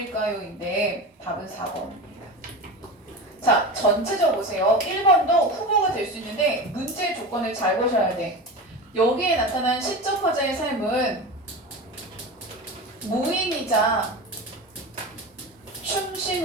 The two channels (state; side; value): normal; both; correlation 0.27